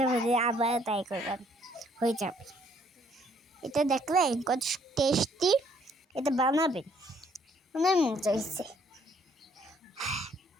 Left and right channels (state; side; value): normal; both; correlation 0.65